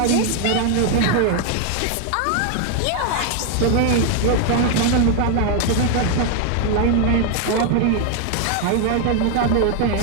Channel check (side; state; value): both; different; correlation 0.00